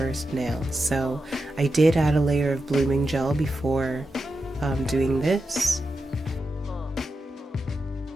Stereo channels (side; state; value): both; normal; correlation 0.89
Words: nail. So I did add a layer of blooming gel before doing this.